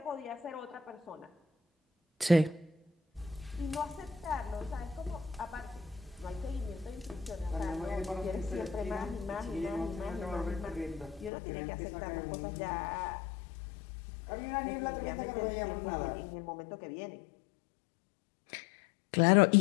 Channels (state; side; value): drops out; right; at 11.3 s